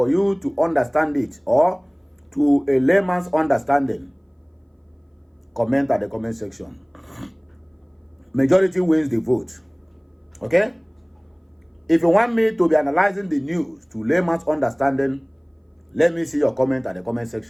you to understand it, or to a layman's understanding, comment at the comment section. Majority wins the vote. Okay? If you want me to be analyzing the news to layman's understanding, let me see your comment at the comment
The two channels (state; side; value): identical; both; correlation 1.00